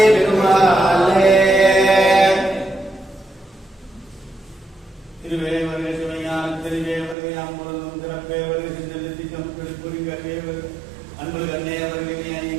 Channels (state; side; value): drops out; left; at 7.2 s